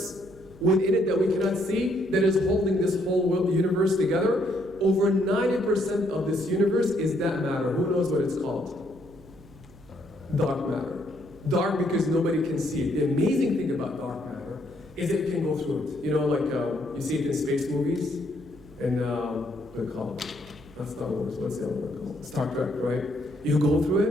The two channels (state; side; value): noise; right; hum, 24 dB below the sound